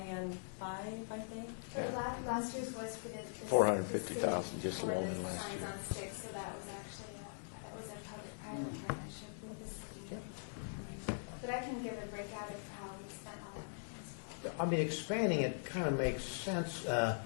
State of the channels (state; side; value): silent; right; digital silence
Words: I think. Yeah. Last year's was for the 450,000 just for alone the in last signs year. on sticks, so that was actually a public-private partnership with the city. But I can give a breakout of how we spent all that. I mean, expanding it kind of makes sense.